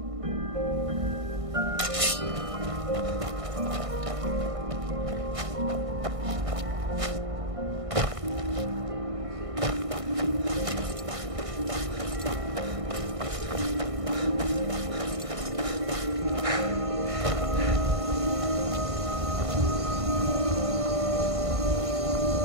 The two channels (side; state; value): left; late; 1.6 ms